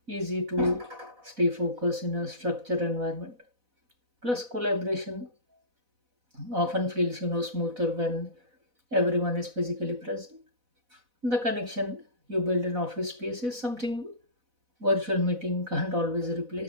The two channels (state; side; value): late; left; 4.0 ms